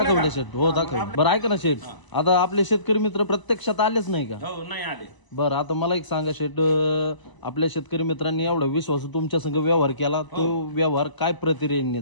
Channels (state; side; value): late; right; 1.0 ms